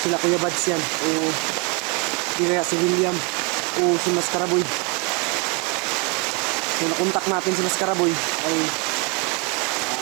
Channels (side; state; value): left; quieter; 32.0 dB